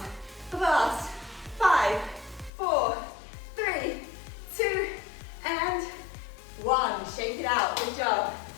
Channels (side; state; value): right; drops out; at 2.5 s